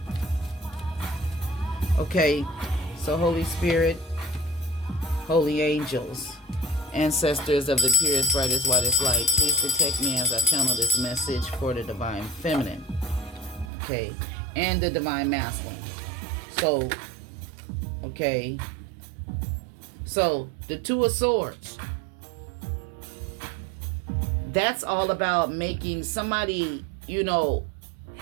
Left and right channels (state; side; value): drops out; left; at 13.7 s